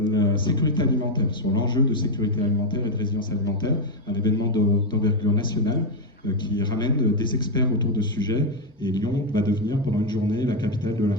la sécurité alimentaire, sur l'enjeu de sécurité alimentaire et de résilience alimentaire, un événement d'envergure nationale qui ramène des experts autour de ce sujet, et Lyon va devenir pendant une journée la capitale de la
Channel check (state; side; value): normal; both; correlation 0.05